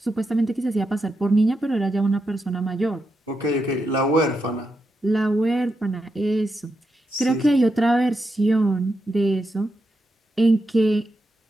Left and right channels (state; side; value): normal; both; correlation 0.85